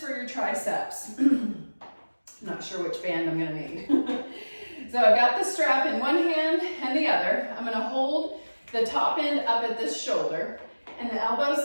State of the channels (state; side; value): inverted; both; correlation -1.00